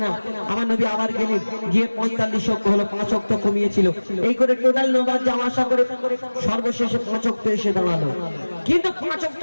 না। আমার নবী আবার গেলেন, গিয়ে 45 ওয়াক্ত হলো, 5 ওয়াক্ত কমিয়েছিল। এই করে টোটাল নামাজ যাওয়া আসা করে সর্বশেষে 5 ওয়াক্ত এসে দাঁড়ালো। কিন্তু 5 ওয়াক্ত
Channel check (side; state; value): both; inverted; correlation -1.00